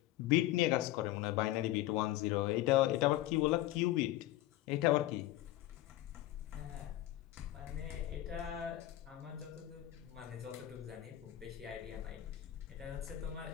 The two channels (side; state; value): right; quieter; 15.1 dB